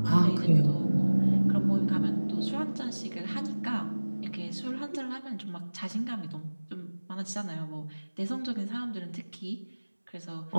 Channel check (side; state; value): both; inverted; correlation -1.00